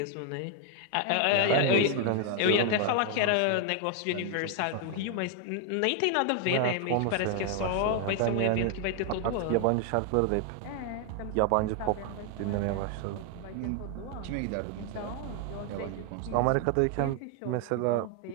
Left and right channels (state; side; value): different; both; correlation 0.00